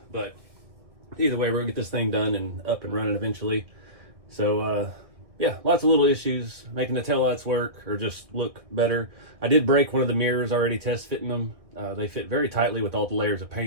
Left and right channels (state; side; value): late; left; 1.9 ms